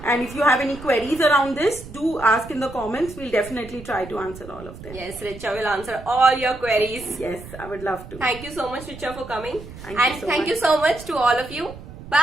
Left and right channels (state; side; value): noise; right; rumble, 15 dB below the sound